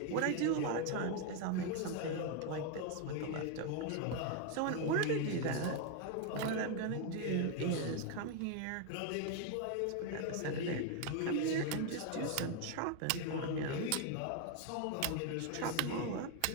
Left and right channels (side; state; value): both; different; correlation 0.01